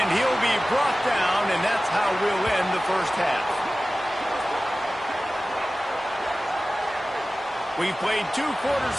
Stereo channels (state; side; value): normal; both; correlation 0.97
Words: he'll be brought down, and that's how we'll end the first half. We've played 2